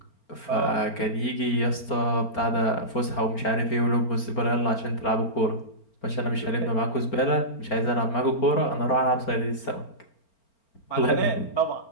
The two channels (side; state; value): right; late; 4.4 ms